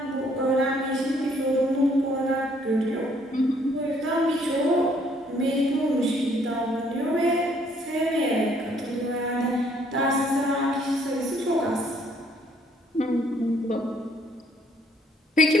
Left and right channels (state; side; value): normal; both; correlation 0.65